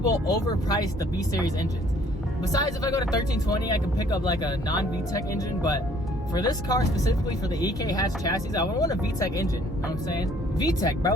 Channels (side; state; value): both; normal; correlation 0.60